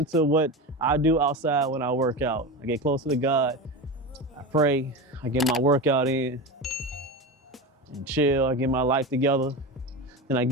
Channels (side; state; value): both; normal; correlation 0.23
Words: what I do outside when I work out. I get closer to God. I pray. I get my workout in and chill. I get my life together. Then I